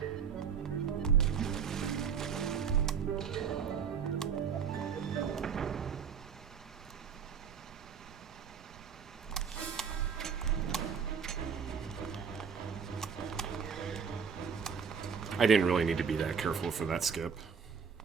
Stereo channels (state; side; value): quieter; left; 6.7 dB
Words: I didn't really need to be that careful for that skip.